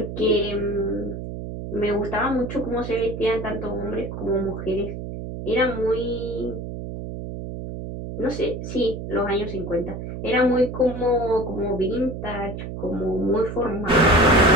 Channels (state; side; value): noise; right; hum, 7 dB below the sound